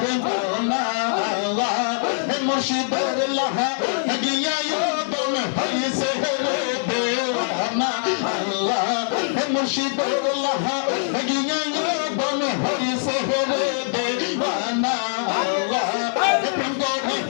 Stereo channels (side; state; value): right; silent; digital silence